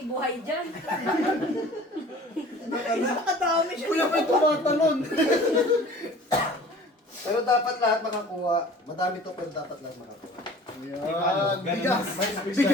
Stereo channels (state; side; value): normal; both; correlation 0.46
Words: buhay dyan. Kuya, may tumatalon. Pero dapat lahat makakuha. Madami to, pero dapat lahat makakuha. Ayan. Bigas.